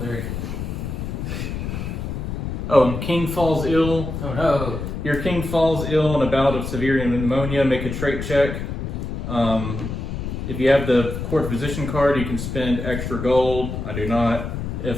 good. Oh, king falls ill. Oh no. Your king falls ill in a bout of severe pneumonia. Make a trait check. If you have the court physician card, you can spend extra gold. I do not.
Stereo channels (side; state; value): left; noise; rumble, 5 dB below the sound